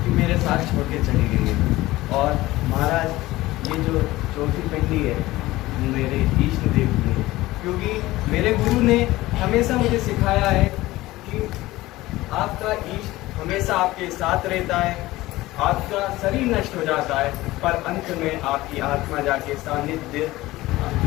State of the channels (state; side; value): quieter; right; 18.0 dB